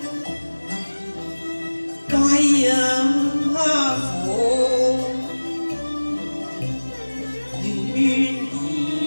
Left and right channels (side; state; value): both; inverted; correlation -1.00